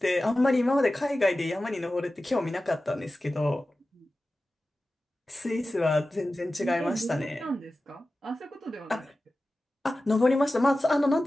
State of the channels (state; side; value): normal; both; correlation 0.95